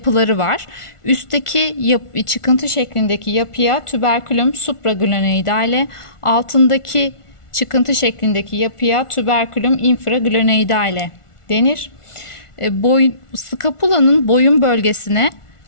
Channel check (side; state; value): right; late; 1.4 ms